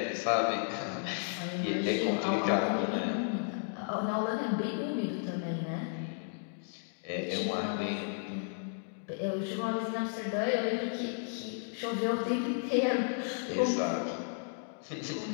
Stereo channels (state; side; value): silent; right; digital silence